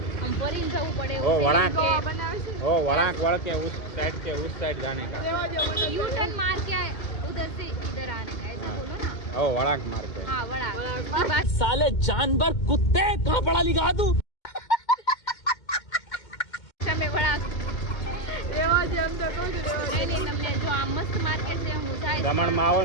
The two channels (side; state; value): right; late; 2.1 ms